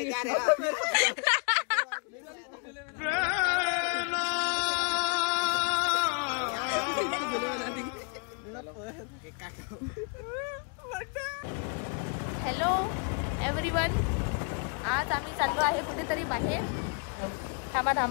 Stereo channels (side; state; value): right; quieter; 39.6 dB